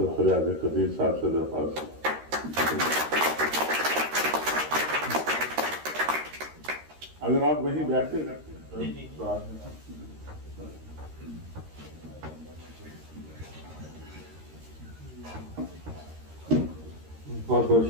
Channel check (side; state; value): left; late; 13 ms